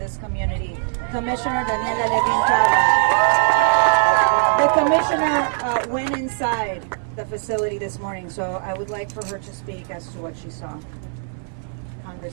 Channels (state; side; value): silent; left; 62 dB below the other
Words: community, Commissioner Daniela Levin Cava. The Commissioner went inside the facility this morning, so I would like for her to speak as to what she saw.